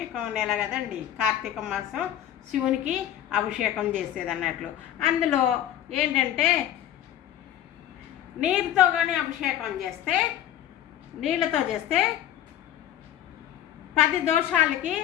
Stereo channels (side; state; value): right; quieter; 11.4 dB